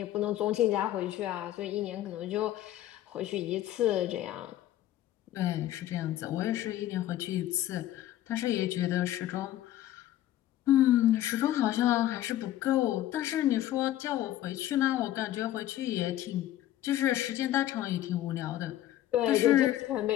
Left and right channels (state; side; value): quieter; right; 13.4 dB